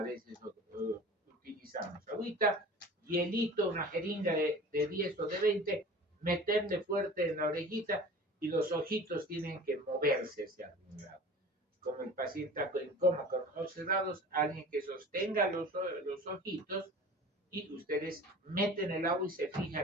veces utilizamos. Agüita, hielito, una jeringa de 10 o de 20, meterle fuerte en la orejita y los ojitos tienen que moverse hacia algún lado. como el paciente está en coma con los ojos cerrados, alguien que sostenga los ojitos y ustedes meten el agua y se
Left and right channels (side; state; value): both; normal; correlation 0.41